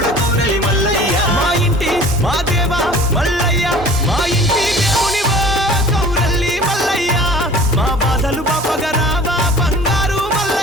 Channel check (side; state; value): both; normal; correlation 0.45